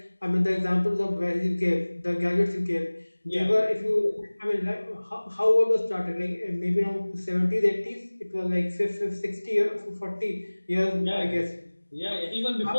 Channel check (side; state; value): both; inverted; correlation -1.00